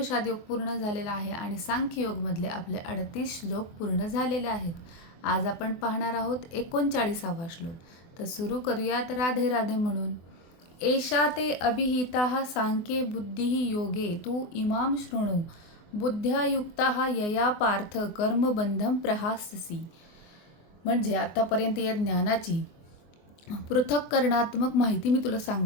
योग पूर्ण झालेला आहे आणि सांख्य योगमधले आपले 38 श्लोक पूर्ण झालेले आहेत. आज आपण पाहणार आहोत 39वा श्लोक. तर सुरू करूयात राधे राधे म्हणून. एषा ते अभिहिता सांख्ये बुद्धिः योगे तू इमाम शृणु बुद्ध्या युक्ता यया पार्थ कर्मबंधम प्रहास्यसि. म्हणजे आतापर्यंत या ज्ञानाची पृथक्करणात्मक माहिती मी तुला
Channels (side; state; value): right; late; 24 ms